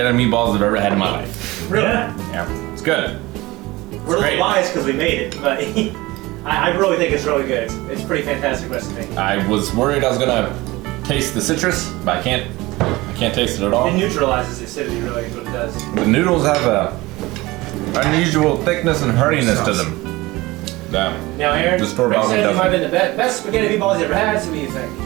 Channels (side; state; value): left; quieter; 20.5 dB